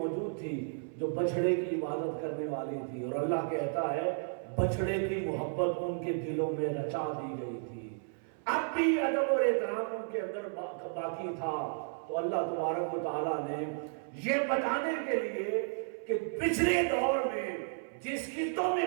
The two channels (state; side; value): silent; left; 56 dB below the other